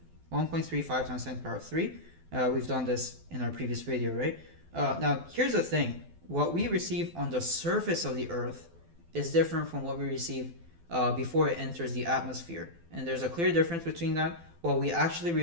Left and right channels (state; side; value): late; left; 12 ms